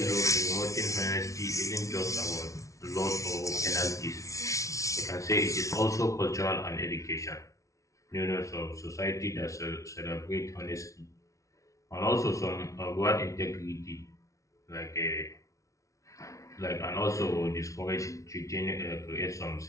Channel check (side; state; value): right; late; 0.15 ms